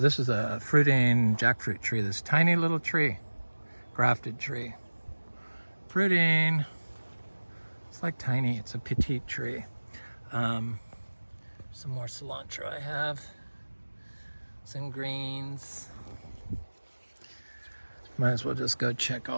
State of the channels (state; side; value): inverted; both; correlation -1.00